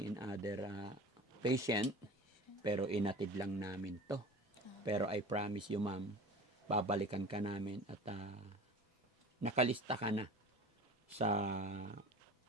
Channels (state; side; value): normal; both; correlation 0.38